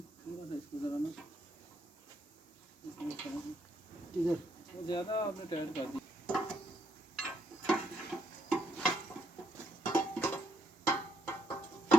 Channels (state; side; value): normal; both; correlation 0.75